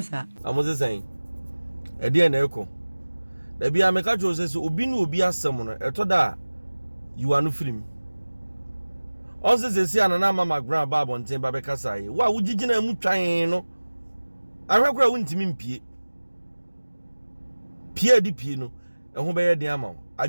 sir. I was saying. E dey na eko. Da bia me ka jo say obi na obi asem no e to da you are no film. Also say anana mama Mcbrown ba bonten ba be kasa yi. Wa wo gigina mu twan no. Ahwekora wo ntimi mpie. Pie di pie no. E ho be ye den ama.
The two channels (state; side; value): inverted; both; correlation -1.00